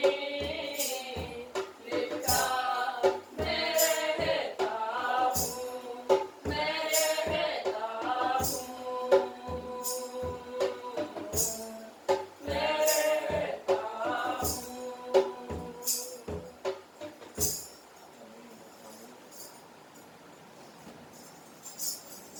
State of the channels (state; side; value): identical; both; correlation 1.00